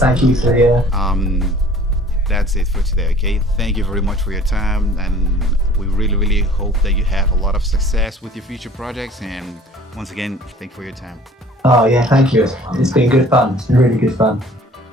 you for the... That's it for today, okay? Thank you very much for your time, and we really, really hope that you have a lot of success with your future projects. And once again, thank you for your time. Oh, yeah, thank you. It's been good fun. It's been really good fun.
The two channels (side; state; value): both; normal; correlation 0.50